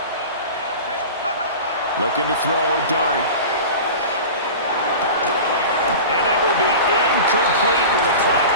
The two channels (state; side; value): inverted; both; correlation -0.33